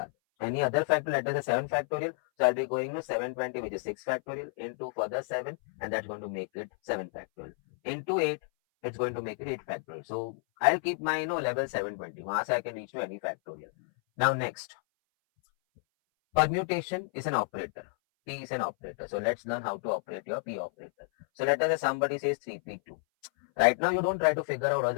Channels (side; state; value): right; silent; 57 dB below the other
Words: Any other factor, let us say 7 factorial. So I'll be going to 720, which is 6 factorial, into further 7, and that's going to make it 7 factorial. Into 8, it's going to make it 8 factorial. So I'll keep my level 720. वहां से I can reach to any factorial. Now next, permutation is an operator. P is an operator. So let's learn how to operate your P operator. So let us say somebody says 3P2. Right now, you don't try to figure out what